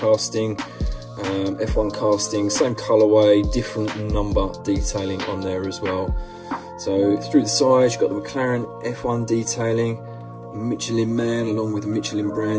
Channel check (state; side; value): identical; both; correlation 1.00